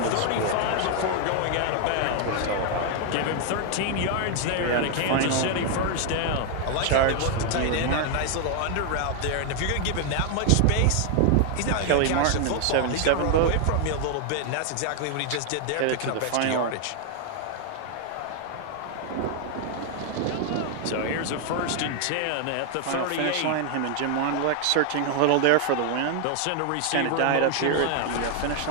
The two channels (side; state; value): both; different; correlation 0.00